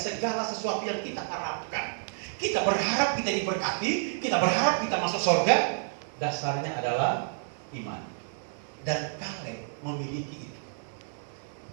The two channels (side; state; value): left; silent; digital silence